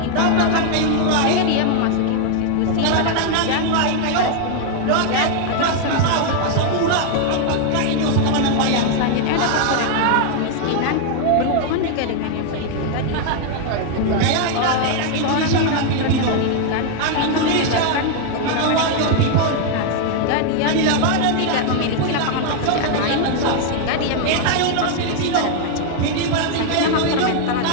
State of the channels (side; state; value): both; different; correlation 0.00